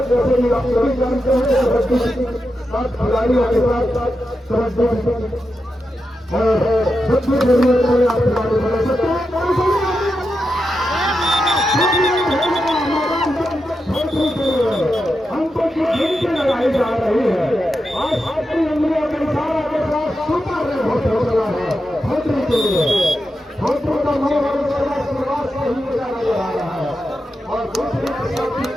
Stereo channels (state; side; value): normal; both; correlation 0.88